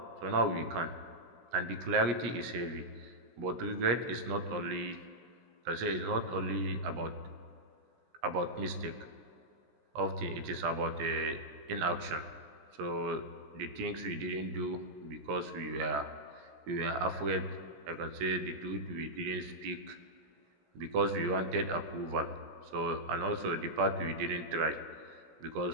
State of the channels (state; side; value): late; left; 17 ms